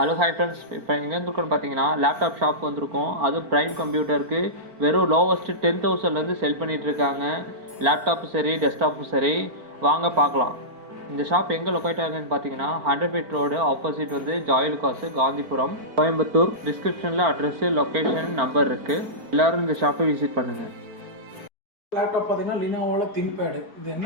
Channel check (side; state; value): left; late; 4.4 ms